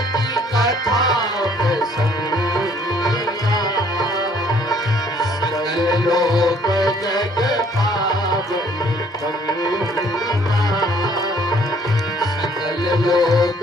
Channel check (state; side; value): normal; both; correlation 0.60